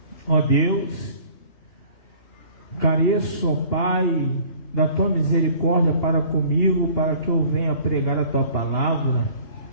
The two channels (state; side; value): late; right; 2.8 ms